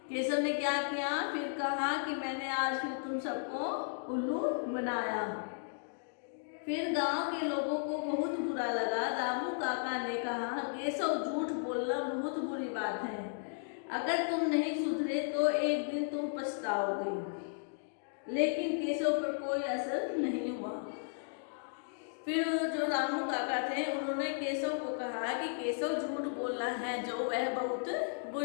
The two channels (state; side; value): silent; right; digital silence